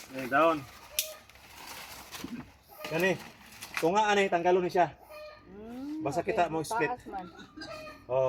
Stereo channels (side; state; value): both; identical; correlation 1.00